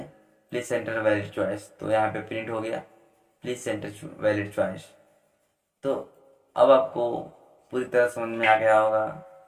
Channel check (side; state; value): both; identical; correlation 1.00